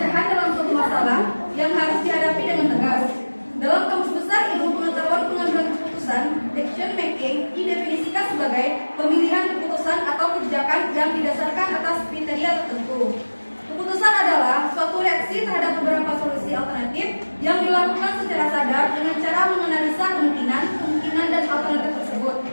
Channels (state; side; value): inverted; both; correlation -1.00